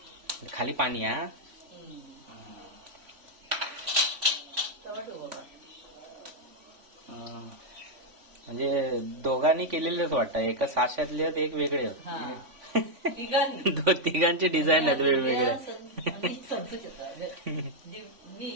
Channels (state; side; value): late; left; 3.5 ms